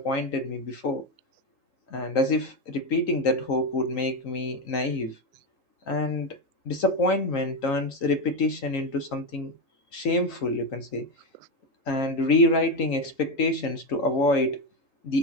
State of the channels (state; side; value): late; right; 3.8 ms